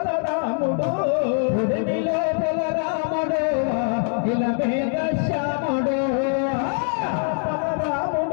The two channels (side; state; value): right; silent; 56 dB below the other